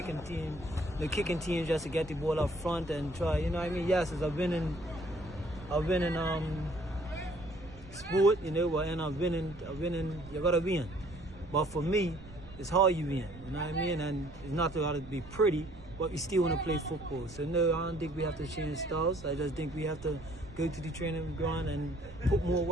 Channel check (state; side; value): noise; right; rumble, 17 dB below the sound